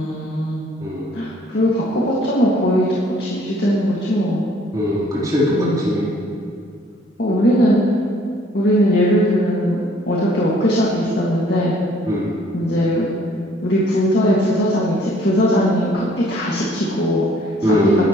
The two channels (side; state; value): both; normal; correlation 0.60